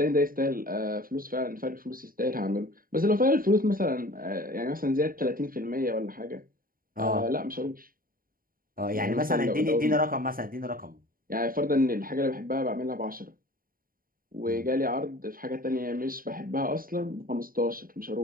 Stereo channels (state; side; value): late; left; 0.41 ms